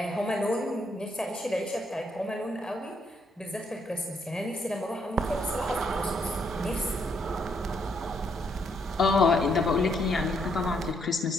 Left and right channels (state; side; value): normal; both; correlation 0.74